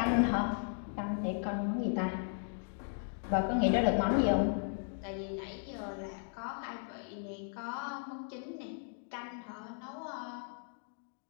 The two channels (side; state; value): right; silent; digital silence